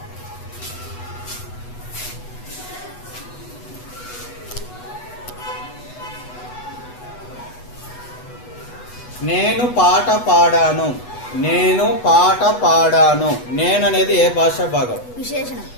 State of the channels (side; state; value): right; late; 8.1 ms